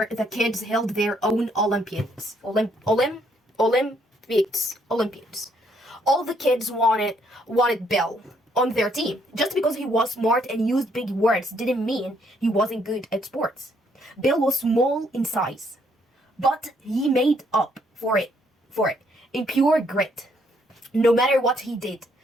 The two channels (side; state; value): both; normal; correlation 0.70